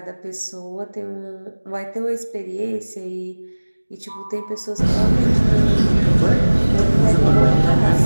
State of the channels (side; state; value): both; inverted; correlation -1.00